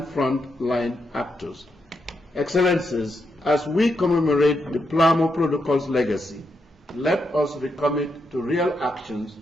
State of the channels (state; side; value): normal; both; correlation 0.82